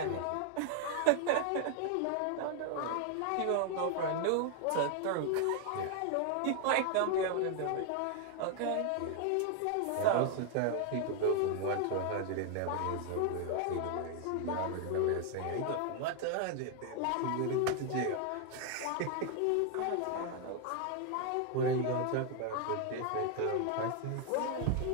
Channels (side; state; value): both; different; correlation 0.00